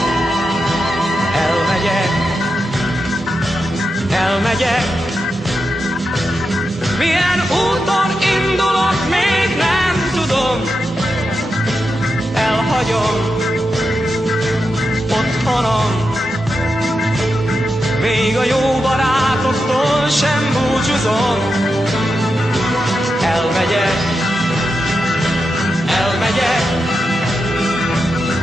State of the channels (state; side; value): normal; both; correlation 0.88